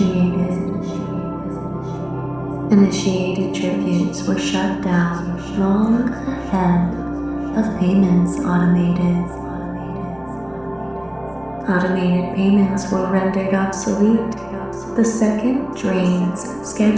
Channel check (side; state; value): right; noise; rumble, 28 dB below the sound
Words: Initiated tributes were shut down long ahead of payments automated. Automated payments were rendered obsolete the second drains